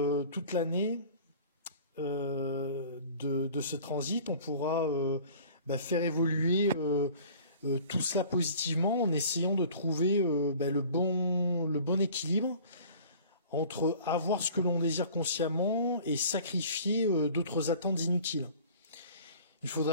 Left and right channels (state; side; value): inverted; both; correlation -0.46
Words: toute l'année de ce transit, on pourra faire évoluer tout cela positivement en essayant de trouver le bon équilibre entre avoir ce que l'on désire consciemment et sacrifier d'autres attentes inutiles. Il